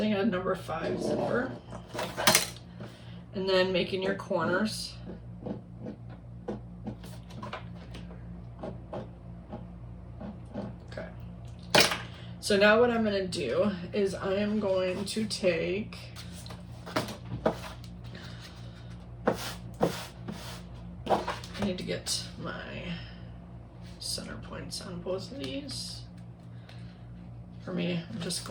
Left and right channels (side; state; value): both; identical; correlation 1.00